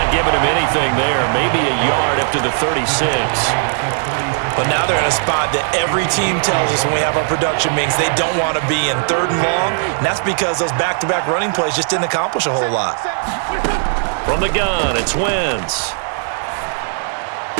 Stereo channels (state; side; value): silent; left; 60 dB below the other